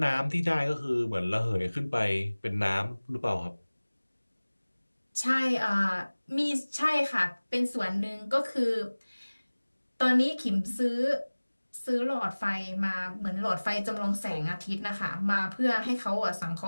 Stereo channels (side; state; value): both; inverted; correlation -1.00